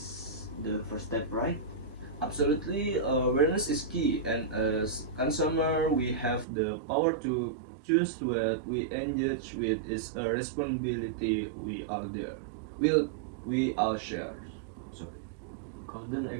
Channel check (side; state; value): left; drops out; at 6.5 s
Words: the first step, right? Absolutely, awareness is key, and as consumer, we have the power to choose what we engage with. Is a responsibility we are there. Will we all share? Sorry. Couldn't